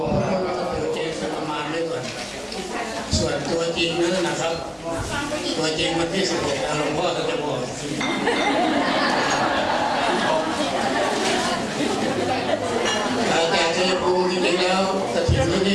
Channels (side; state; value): both; identical; correlation 1.00